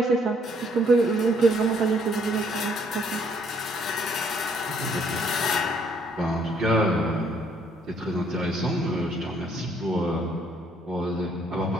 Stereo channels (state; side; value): normal; both; correlation 0.66